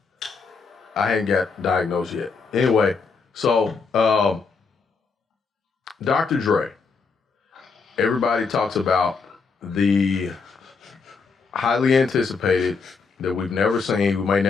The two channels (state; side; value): quieter; right; 4.9 dB